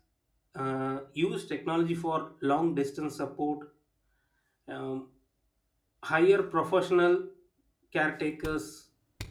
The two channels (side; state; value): both; identical; correlation 1.00